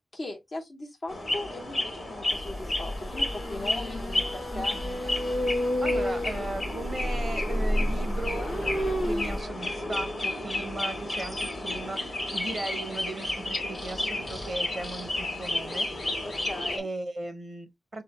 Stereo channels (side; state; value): both; normal; correlation 0.92